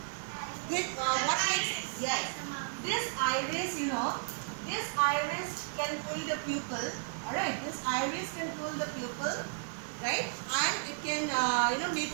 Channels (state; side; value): silent; left; 55 dB below the other